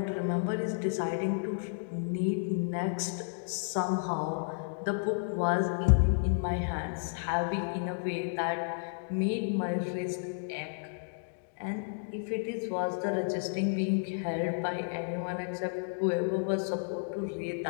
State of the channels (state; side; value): silent; right; digital silence